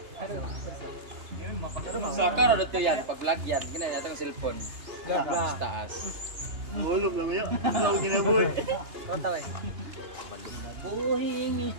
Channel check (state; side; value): late; left; 2.9 ms